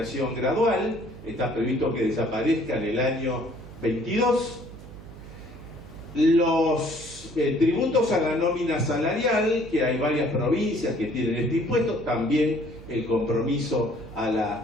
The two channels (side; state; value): right; noise; hum, 17 dB below the sound